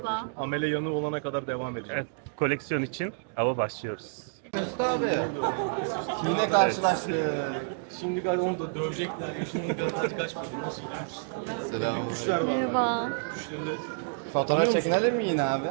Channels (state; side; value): silent; left; digital silence